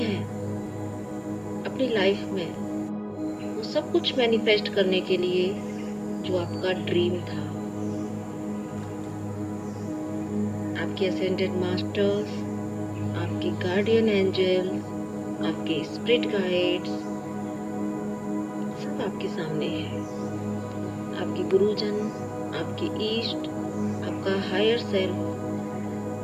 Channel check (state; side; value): identical; both; correlation 1.00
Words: अपनी लाइफ में वो सब कुछ मैनिफेस्ट करने के लिए जो आपका ड्रीम था। आपके असेंडेड मास्टर्स, आपके गार्डियन एंजल, आपके स्पिरिट गाइड्स सब आपके सामने हैं। आपके गुरुजन, आपके ईस्ट, आपका हायर सेल्फ